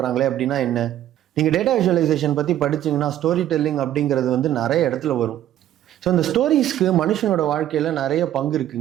அப்படின்னா என்ன? நீங்கள் டேட்டா விஷுவலைசேஷன் பற்றி படிச்சிங்கன்னா ஸ்டோரி டெல்லிங் அப்படிங்கிறது வந்து நிறைய இடத்துல வரும். ஸோ இந்த ஸ்டோரிஸ்க்கு மனுஷனோட வாழ்க்கையில் நிறைய பங்கு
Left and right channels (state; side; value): quieter; left; 12.2 dB